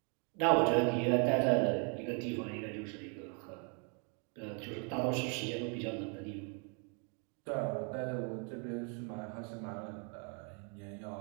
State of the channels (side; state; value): left; quieter; 37.8 dB